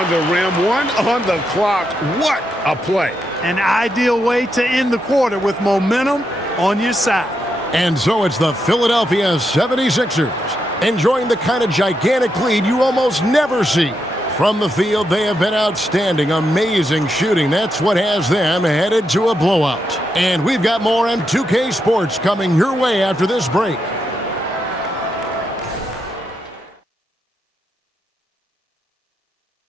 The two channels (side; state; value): both; normal; correlation 0.83